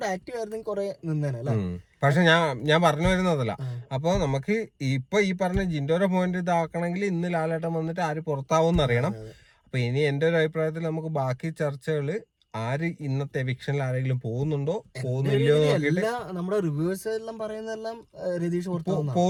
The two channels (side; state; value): both; identical; correlation 1.00